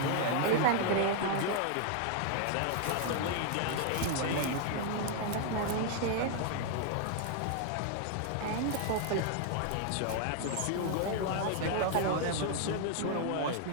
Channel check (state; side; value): different; both; correlation 0.00